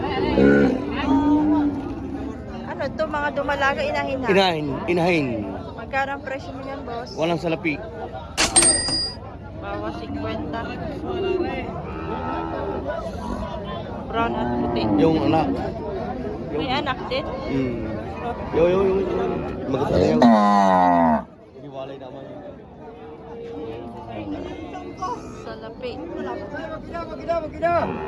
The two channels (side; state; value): both; identical; correlation 1.00